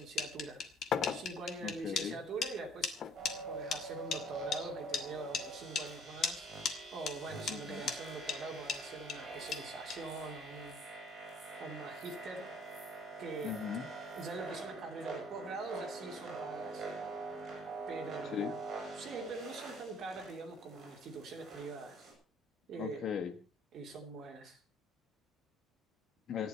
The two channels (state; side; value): normal; both; correlation 0.57